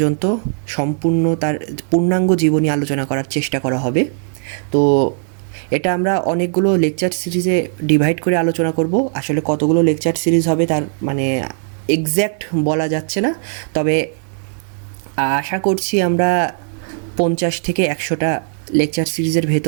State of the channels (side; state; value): left; silent; digital silence